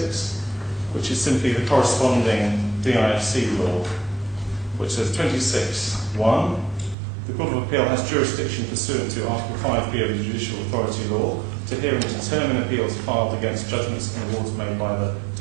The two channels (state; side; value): drops out; left; at 7.0 s